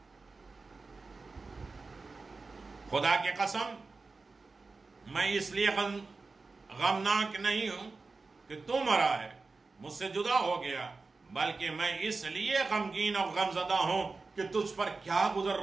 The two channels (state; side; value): quieter; left; 3.9 dB